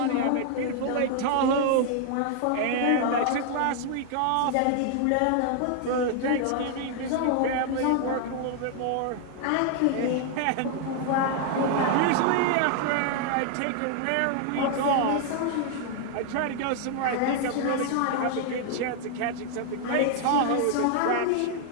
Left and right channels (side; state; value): both; different; correlation 0.00